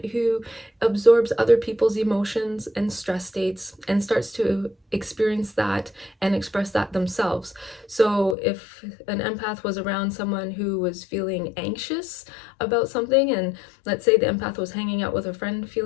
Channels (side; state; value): right; drops out; at 8.3 s